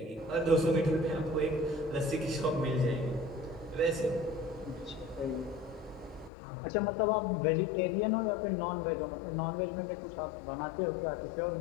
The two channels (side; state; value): right; drops out; at 6.3 s